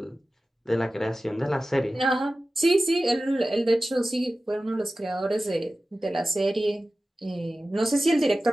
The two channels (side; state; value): both; normal; correlation 0.95